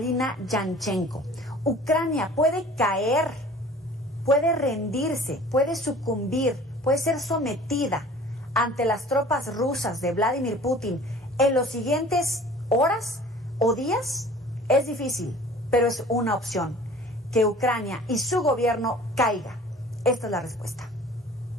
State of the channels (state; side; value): normal; both; correlation 0.46